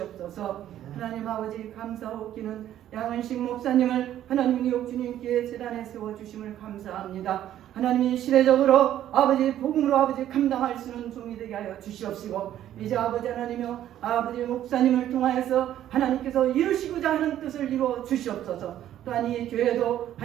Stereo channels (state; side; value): quieter; left; 11.8 dB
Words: 하나님 아버지 감사하옵기는 양은식 목사님을 하나님 뉴욕 주님께 제단에 세워주심을 감사합니다. 하나님이 시대적으로 아버지 복음으로 아버지 감당할 수 있는 종이 되게 하여 주시옵시고 이제 아버지 하나님이여 아버지 목사님을 통하여서 하나님께서 이루시고자 하는 뜻을 이루어 주시옵소서. 또한 이 교회도